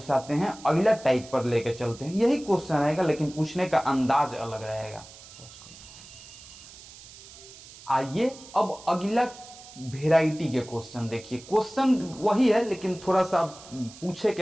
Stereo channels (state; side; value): noise; right; hiss, 19 dB below the sound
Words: हैं, अगला टाइप पर लेके चलते हैं। यही क्वेश्चन रहेगा लेकिन पूछने का अंदाज अलग रहेगा। आइए अब अगला वेराइटी के क्वेश्चन देखिए। क्वेश्चन वही है लेकिन थोड़ा सा पूछे के